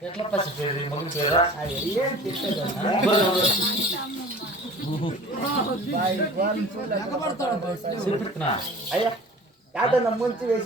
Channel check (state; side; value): normal; both; correlation 0.43